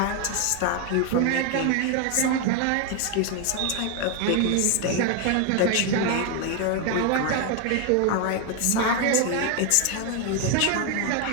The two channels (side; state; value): both; different; correlation 0.01